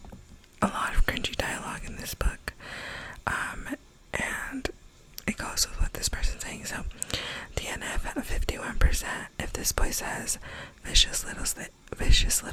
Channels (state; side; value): identical; both; correlation 1.00